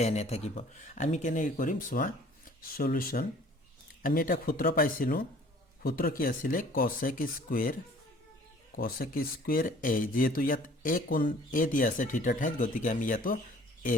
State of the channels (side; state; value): both; normal; correlation 0.52